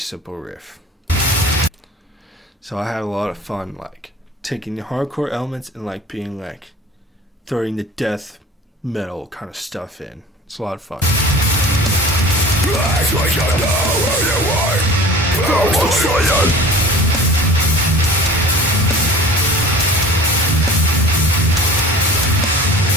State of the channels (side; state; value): both; normal; correlation 0.40